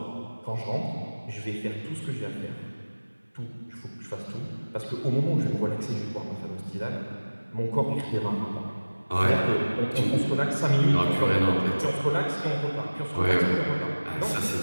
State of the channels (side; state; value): both; inverted; correlation -1.00